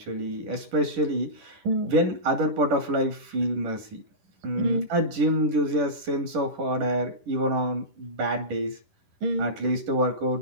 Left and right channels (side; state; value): left; late; 10 ms